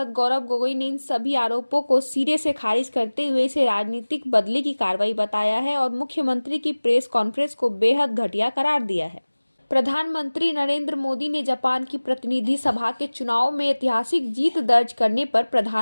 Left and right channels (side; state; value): both; inverted; correlation -1.00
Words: गौरव गोगोई ने इन सभी आरोपों को सिरे से खारिज करते हुए इसे राजनीतिक बदले की कार्रवाई बताया है और मुख्यमंत्री की प्रेस कॉन्फ्रेंस को बेहद घटिया करार दिया है। प्रधानमंत्री नरेंद्र मोदी ने जापान की प्रतिनिधि सभा के चुनाव में ऐतिहासिक जीत दर्ज करने पर